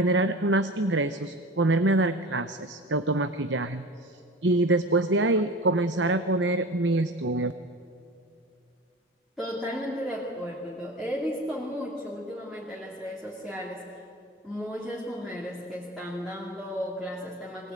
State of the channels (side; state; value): both; normal; correlation 0.34